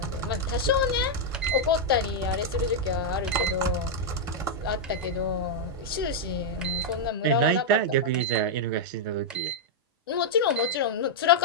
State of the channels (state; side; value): normal; both; correlation -0.03